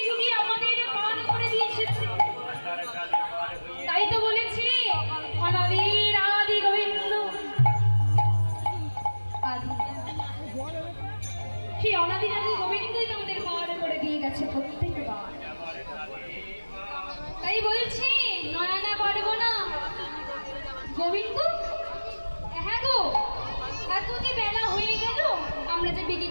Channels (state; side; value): inverted; both; correlation -1.00